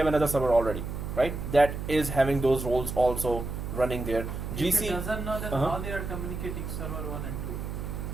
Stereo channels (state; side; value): noise; right; hum, 6 dB below the sound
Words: another server already, right? That is having those roles also running there. GC It doesn't know that how they are communicating server 1 and 2.